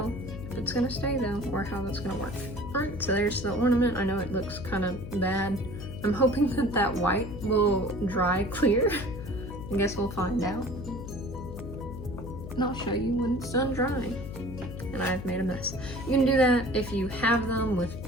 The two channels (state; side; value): noise; left; hum, 9 dB below the sound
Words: if it's gonna stay though, or how that's gonna work. Alright, so there's the ornament. I know it looks kind of bad. I'm hoping that that white will dry clear. I guess we'll find out. And I'll show you when it's done drying. And I've made a mess. You can do that if you have them with